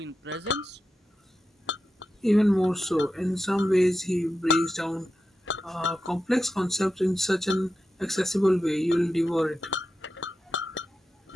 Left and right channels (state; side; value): normal; both; correlation 0.90